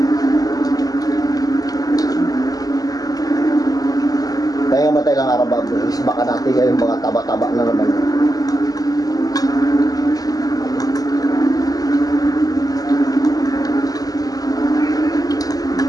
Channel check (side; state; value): right; late; 0.18 ms